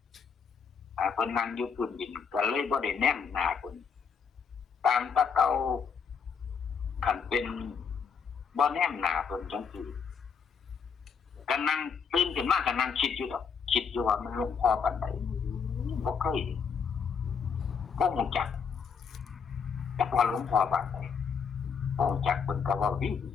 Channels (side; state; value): right; quieter; 6.3 dB